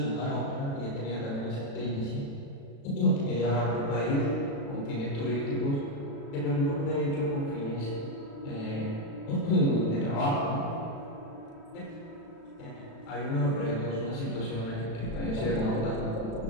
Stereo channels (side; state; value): right; late; 36 ms